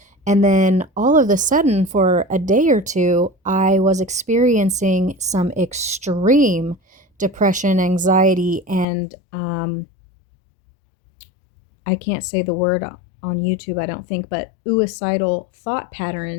And then all of a sudden, for a day or two, I was experiencing some extreme depression, anxiety, and I can't say the word on YouTube, I don't think, but suicidal thought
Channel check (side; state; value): right; drops out; at 8.8 s